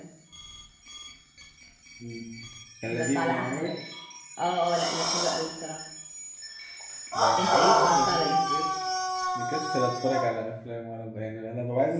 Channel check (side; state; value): both; identical; correlation 1.00